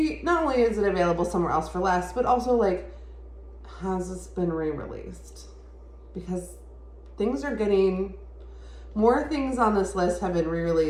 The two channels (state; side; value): identical; both; correlation 1.00